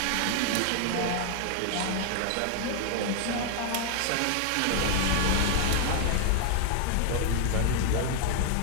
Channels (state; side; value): different; both; correlation 0.00